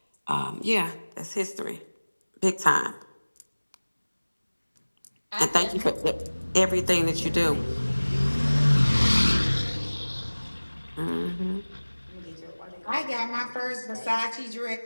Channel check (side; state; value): both; inverted; correlation -1.00